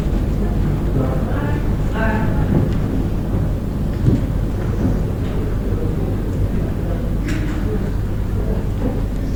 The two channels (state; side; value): identical; both; correlation 1.00